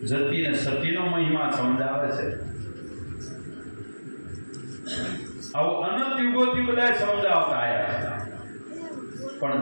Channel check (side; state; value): both; inverted; correlation -1.00